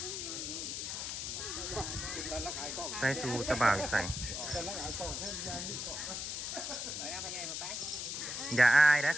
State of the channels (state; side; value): noise; left; hiss, 4 dB below the sound